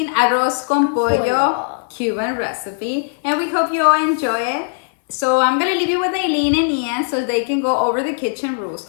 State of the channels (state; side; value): silent; right; 67 dB below the other